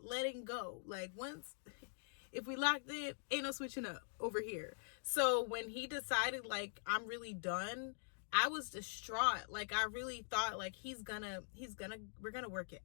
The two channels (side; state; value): right; silent; digital silence